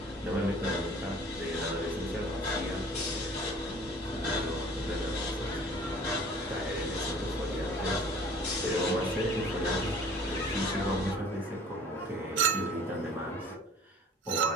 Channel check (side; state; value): both; normal; correlation 0.48